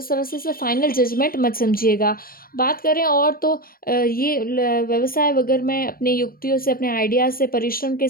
तरह से इसे फाइनल जजमेंट मत समझिएगा। बात करें और तो ये व्यवसाय वगैरह में अपनी युक्तियों से, अपने आइडियाज़ से, परिश्रम के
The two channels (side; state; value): right; late; 0.42 ms